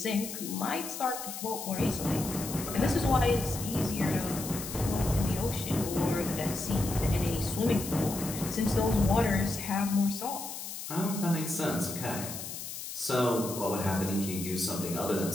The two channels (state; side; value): noise; left; hiss, 8 dB below the sound